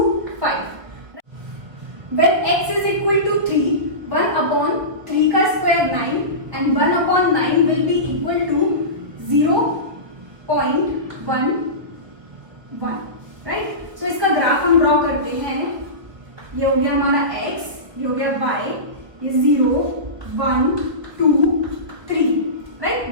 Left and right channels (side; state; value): left; late; 1.5 ms